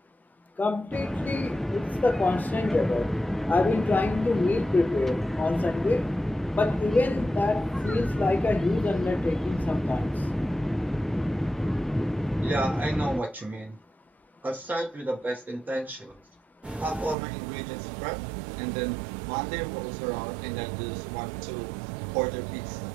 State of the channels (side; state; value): left; drops out; at 17.2 s